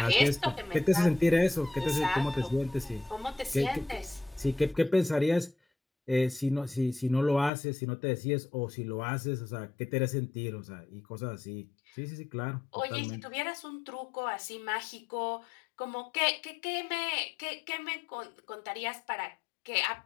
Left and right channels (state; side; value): drops out; right; at 7.5 s